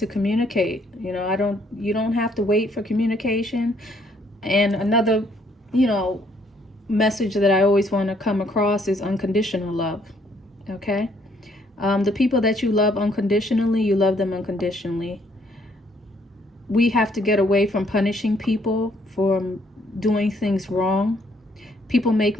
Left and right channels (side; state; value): both; normal; correlation 0.67